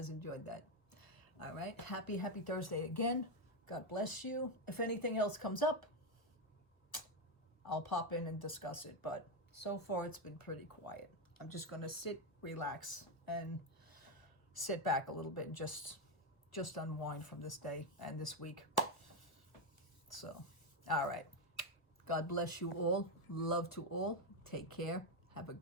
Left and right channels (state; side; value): late; right; 1.3 ms